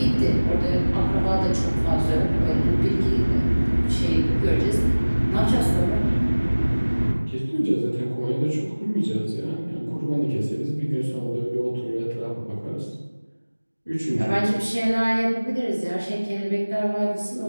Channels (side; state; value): both; inverted; correlation -1.00